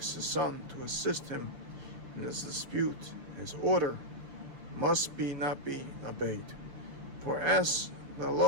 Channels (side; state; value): left; late; 6.7 ms